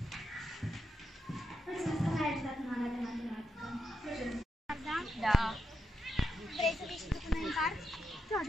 Da. Vrei să vii și tu cu noi în parc? Da,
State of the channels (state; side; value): normal; both; correlation 0.84